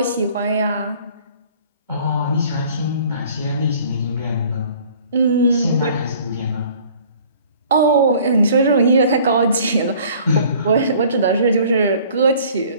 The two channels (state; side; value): inverted; both; correlation -0.52